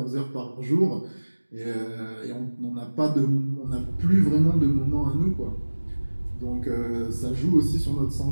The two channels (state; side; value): inverted; both; correlation -1.00